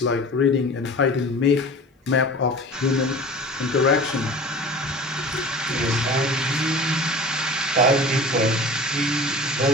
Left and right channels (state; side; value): normal; both; correlation 0.39